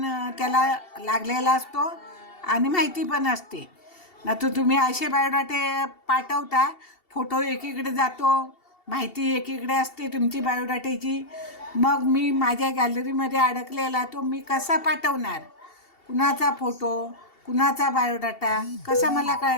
त्याला लागलेला असतो आणि माहिती पण असते. ना तर तुम्ही असे बायोडाटे पाठवता, फोटो एकीकडे जातो, माहिती एकीकडे असते तुमची बायोडाट्याची. मग मी माझ्या गॅलरीमध्ये अडकलेला तो मी कसा पाठवणार? कुणाचा फोटो, कुणाचा बायोडाटा कसा मला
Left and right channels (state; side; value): late; right; 2.7 ms